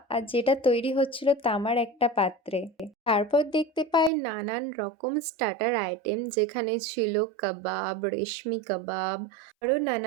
আর যেটা তৈরি হচ্ছিল তামার একটা পাত্রে। তারপর দেখতে পাই নানান রকম স্টার্টার আইটেম, যেখানে ছিল কাবাব, রেশমি কাবাব, আরও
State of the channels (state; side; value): drops out; left; at 4.1 s